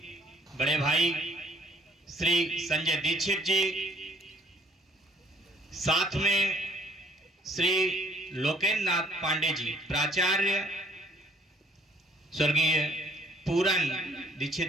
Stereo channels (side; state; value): both; normal; correlation 0.60